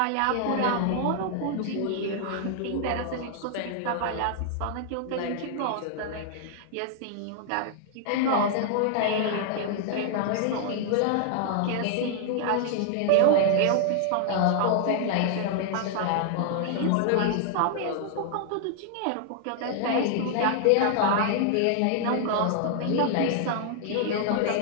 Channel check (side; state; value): both; different; correlation -0.01